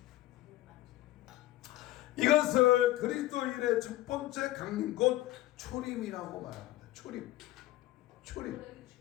이것을 그리스도인의 첫 번째 강림 곧 초림이라고 말합니다. 초림.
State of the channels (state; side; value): quieter; right; 16.3 dB